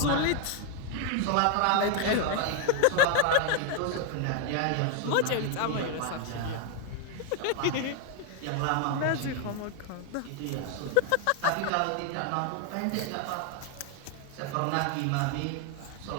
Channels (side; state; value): both; different; correlation 0.01